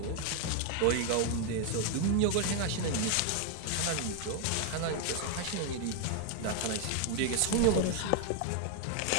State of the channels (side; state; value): both; different; correlation 0.01